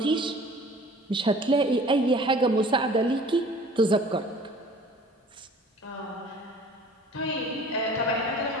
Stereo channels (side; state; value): both; normal; correlation 0.49